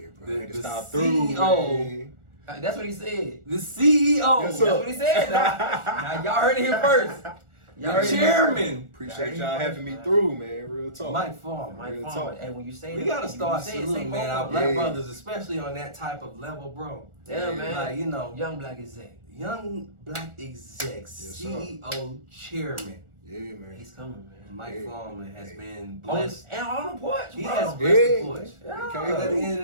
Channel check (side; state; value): left; late; 1.4 ms